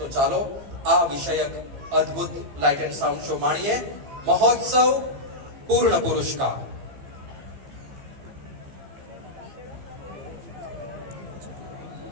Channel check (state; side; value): late; left; 15 ms